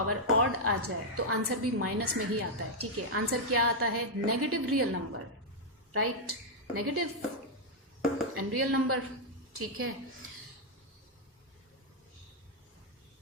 ऑड आ जाए तो आंसर भी माइनस में ही आता है, ठीक है। आंसर क्या आता है, negative real number, right, negative and real number, ठीक है।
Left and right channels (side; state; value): both; normal; correlation -0.03